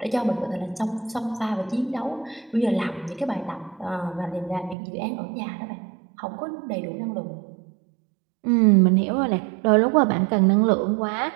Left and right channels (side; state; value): left; drops out; at 4.8 s